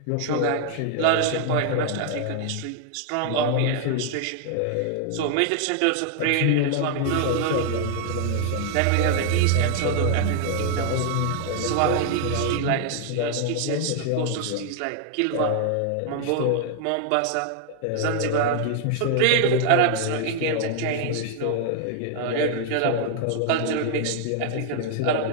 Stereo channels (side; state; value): both; different; correlation 0.00